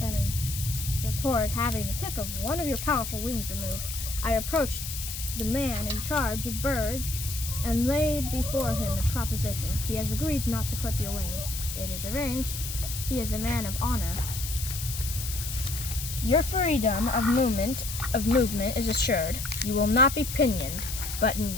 toward having the tip of one of your powerful wings removed, I approached the man in charge of birds and laid before him a proposition. He has agreed not to clip your wing. It is arranged. He is a man of honor. Your freedom of movement is assured. You will not be pinioned, but in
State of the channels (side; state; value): left; noise; hiss, 7 dB below the sound